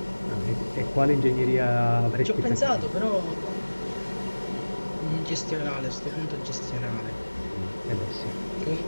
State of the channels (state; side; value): inverted; both; correlation -1.00